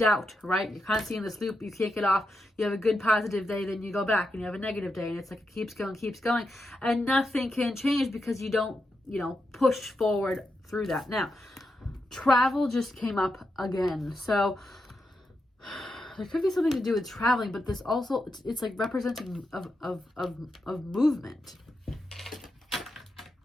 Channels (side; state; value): both; normal; correlation 0.86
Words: right? You're constantly in this loop. You can't get off. You have a good positive day, then you go back and you have a negative day, and it's like it keeps going, and nothing can change because you don't, push forward through that. Now, travel just came up again. So there could be something to do with traveling, but this also, it's like representing of movement.